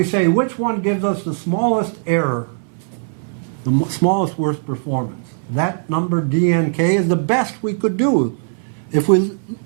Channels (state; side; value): silent; left; 63 dB below the other